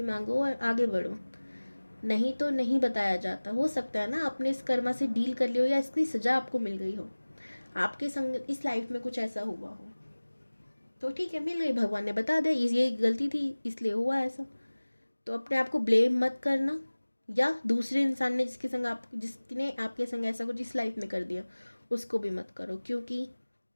मांगो और आगे बढ़ो, नहीं तो नहीं बताया जाता। हो सकता है ना आपने इस कर्मा से डील कर लियो या इसकी सज़ा आपको मिल गई हो, आपके संग इस लाइफ में कुछ ऐसा हुआ हो, तो ठीक है मिल गई, भगवान ने बता दिया ये गलती थी इसलिए हुआ ऐसा। तो अपने आप को ब्लेम मत करना, या दूसरे इंसान ने जिसने आपके संग ऐसा कुछ इस लाइफ में कर दिया उसको भी मत करो, क्योंकि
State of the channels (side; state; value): both; inverted; correlation -1.00